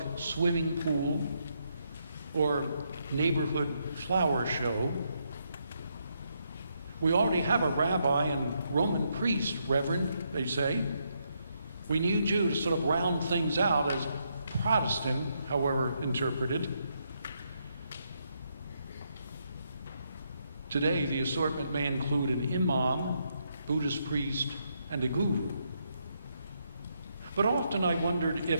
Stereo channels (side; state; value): both; inverted; correlation -0.78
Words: swimming pool, or neighborhood flower show. We already have a rabbi and Roman priest, Reverend, they say. We need you to sort of round things out as Protestant, however interpreted. Today, the assortment may include an imam, Buddhist priest, and a guru. But often I wondered